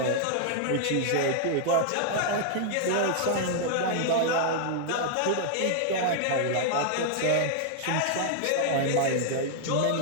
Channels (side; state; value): both; different; correlation -0.01